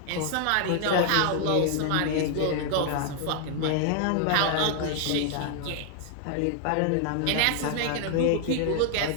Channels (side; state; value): both; different; correlation 0.00